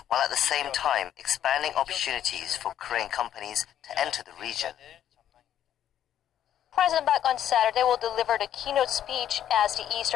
while at the same time expanding opportunities for Korean companies to enter the region. President Park on Saturday will deliver the keynote speech as the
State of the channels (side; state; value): right; quieter; 10.7 dB